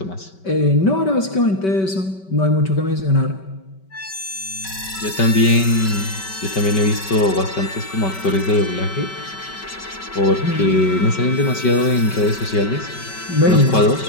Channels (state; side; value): late; right; 5.2 ms